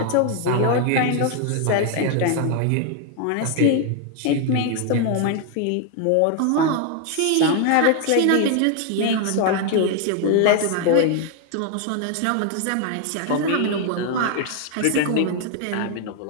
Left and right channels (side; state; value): both; different; correlation 0.00